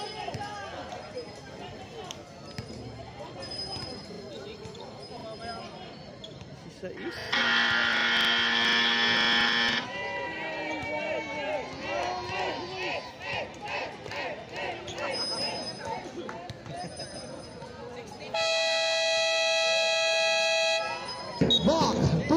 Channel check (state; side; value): identical; both; correlation 1.00